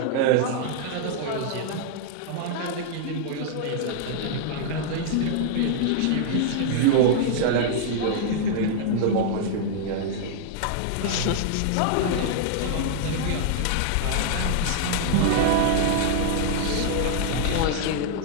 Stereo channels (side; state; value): both; different; correlation -0.01